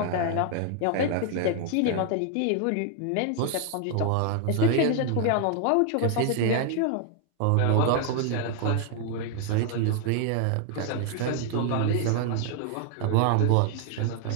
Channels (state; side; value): different; both; correlation 0.00